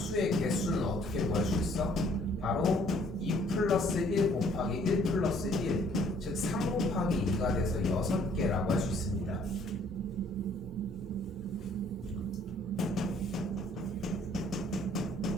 개수는 어떻게 구할 수 있어? 바로 2 플러스 1 곱하기 1 플러스 1, 즉 3 곱하기 2가 돼서 6개라고 할 수 있습니다.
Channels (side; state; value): both; normal; correlation 0.60